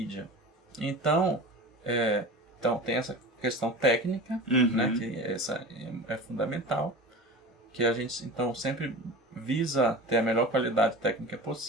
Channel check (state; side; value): normal; both; correlation 0.33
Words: Então, tem essa questão técnica, né, que essa é fundamental, que a gente então sempre visa ter a melhor qualidade técnica